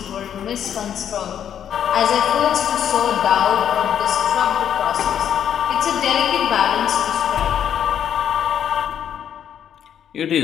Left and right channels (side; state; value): right; quieter; 9.3 dB